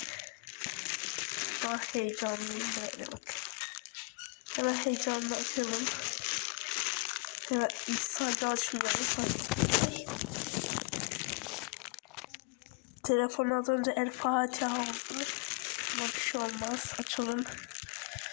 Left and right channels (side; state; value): right; quieter; 34.6 dB